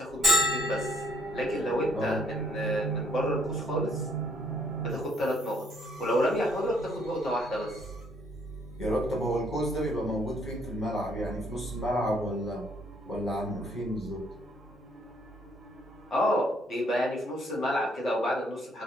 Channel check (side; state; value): both; normal; correlation 0.66